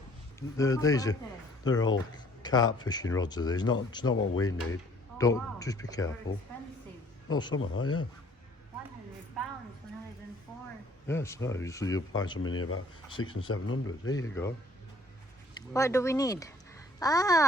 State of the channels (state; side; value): normal; both; correlation 0.58